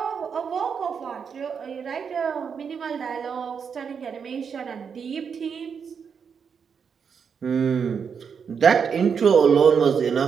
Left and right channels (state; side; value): quieter; left; 6.6 dB